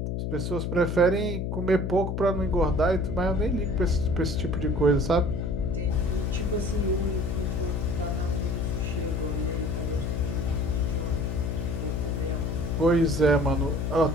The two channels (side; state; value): left; noise; hum, 2 dB below the sound